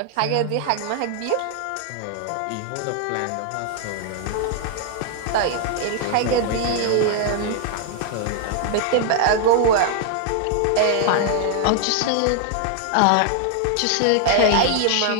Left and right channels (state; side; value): different; both; correlation 0.00